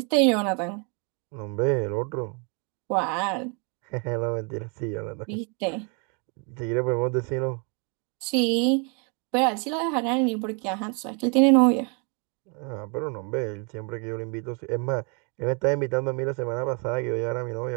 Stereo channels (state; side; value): quieter; left; 35.7 dB